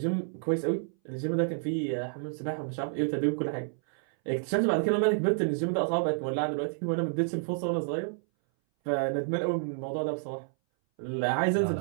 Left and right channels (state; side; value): silent; left; 58 dB below the other